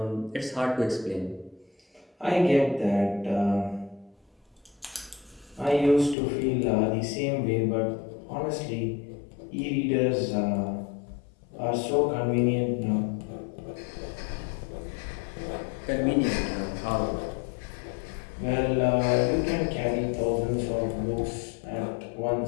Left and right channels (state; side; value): drops out; right; at 6.2 s